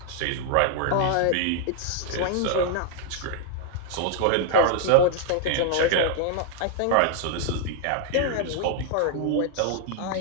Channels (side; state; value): both; different; correlation 0.00